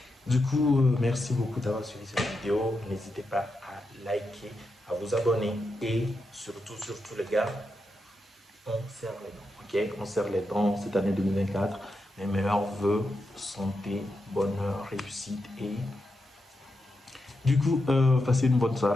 Du coup, merci beaucoup d'avoir suivi cette vidéo. N'hésitez pas à liker, à vous abonner et surtout, surtout les gars, on serre les dents. Ok, on serre les dents cette année 2024. Mes meilleurs vœux, santé, bonheur, réussite et du coup, passez une bonne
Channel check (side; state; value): both; normal; correlation 0.86